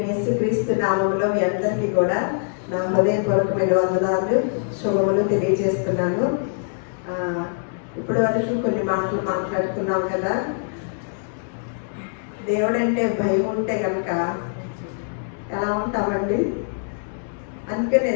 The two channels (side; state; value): right; silent; digital silence